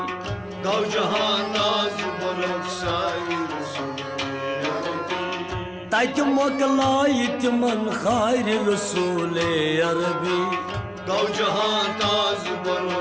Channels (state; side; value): identical; both; correlation 1.00